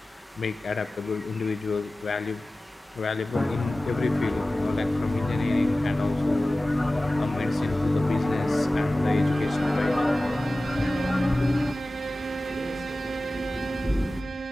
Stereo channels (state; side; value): normal; both; correlation 0.96